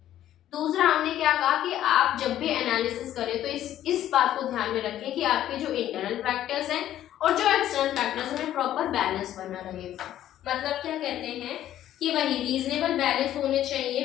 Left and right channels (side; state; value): right; quieter; 12.2 dB